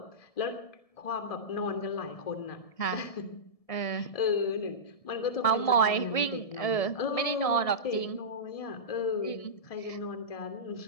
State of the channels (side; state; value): right; late; 1.7 ms